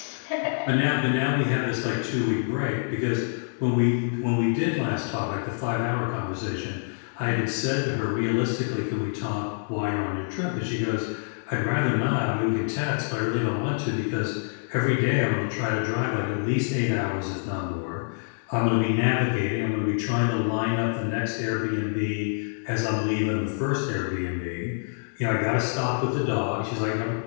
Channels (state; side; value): silent; right; digital silence